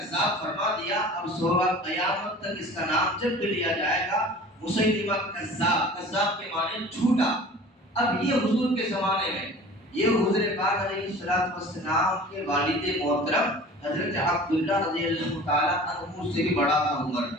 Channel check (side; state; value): both; normal; correlation 0.42